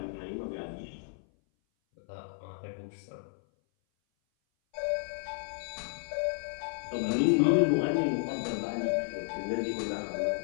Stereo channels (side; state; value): right; silent; 56 dB below the other